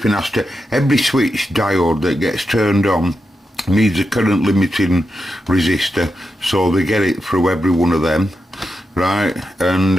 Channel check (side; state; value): both; normal; correlation 0.87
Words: has to, every switch diode that gets turned on needs a current limiting resistor, so they get it through every one of them, right? And